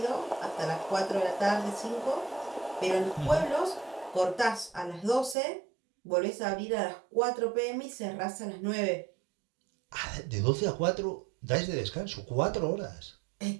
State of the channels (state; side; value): drops out; left; at 5.4 s